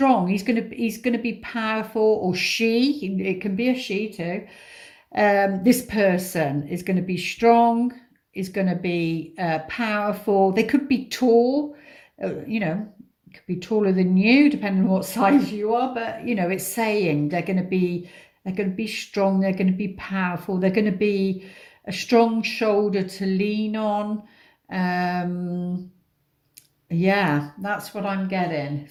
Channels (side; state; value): both; identical; correlation 1.00